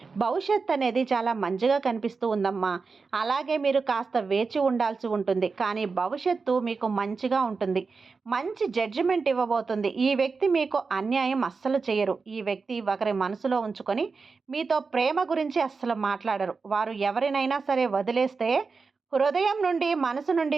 భవిష్యత్ అనేది చాలా మంచిగా కనిపిస్తూ ఉందమ్మా. అలాగే మీరు కాస్త వేచి ఉండాల్సి ఉంటుంది. కానీ భవిష్యత్తు మీకు మంచిగా ఉంటుంది. మంచి జడ్జిమెంట్ ఇవ్వబోతుంది. ఈ వ్యక్తి మీకు అన్యాయం అస్సలు చేయరు. ఈ వ్యక్తి ఒకరి మనసులో ఉంచుకొని మీతో ప్రేమ గురించి అస్సలు మాట్లాడరు. వారు ఎవరినైనా సరే వదిలేస్తే హృదయం నుండి, మనసు నుండి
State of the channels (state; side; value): quieter; left; 4.6 dB